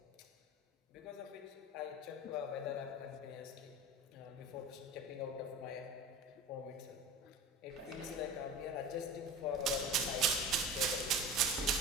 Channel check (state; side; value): normal; both; correlation 0.33